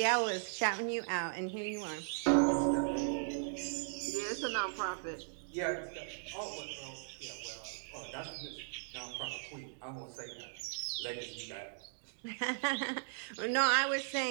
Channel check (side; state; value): left; silent; digital silence